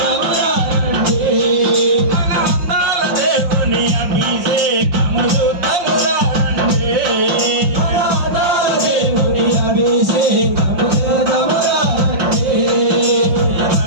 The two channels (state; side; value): late; left; 5.6 ms